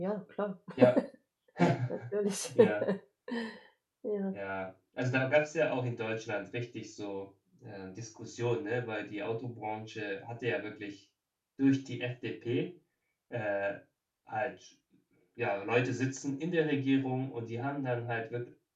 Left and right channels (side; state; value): both; identical; correlation 1.00